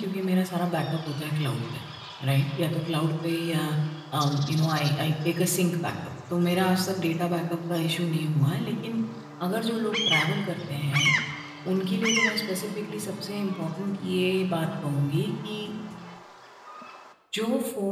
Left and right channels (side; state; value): both; identical; correlation 1.00